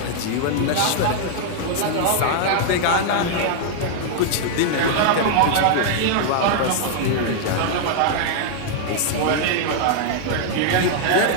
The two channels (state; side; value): different; both; correlation 0.00